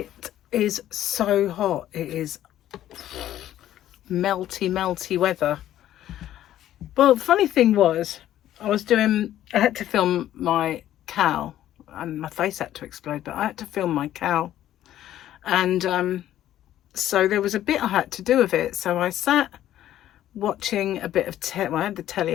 is so hot. It is melty weather. Well, the funny thing was, I had to film my cow and my face had to explode, but I had to film my cow. And so there was a bit I had to do with it. So I sat watching a bit of I had the telly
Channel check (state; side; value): quieter; right; 12.5 dB